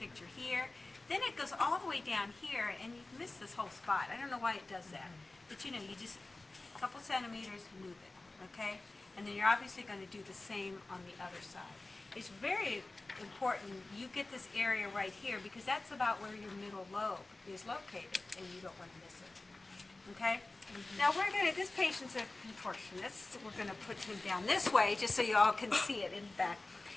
here, then it goes all the way down here, and you miss this whole spot. I don't know why it does that. But you know, you just, a couple centimeters, move it, okay? And then you're obviously going to do the same on the other side. It's very important you get this area right here, because that's about where your middle lobe is located, and you don't want to miss it, okay? Now we're going to, this patient's a contortionist. We're going to put him down this way just so you all can see it in the back.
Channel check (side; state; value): right; quieter; 3.1 dB